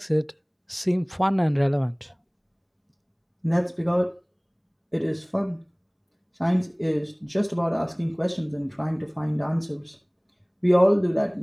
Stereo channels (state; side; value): identical; both; correlation 1.00